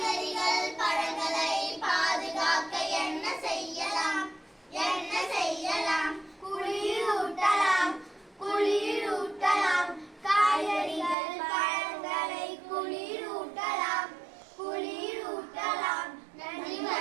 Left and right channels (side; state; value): left; drops out; at 11.2 s